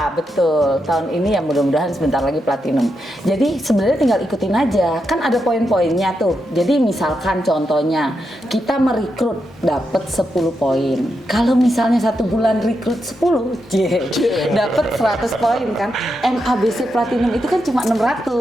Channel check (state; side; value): normal; both; correlation 0.85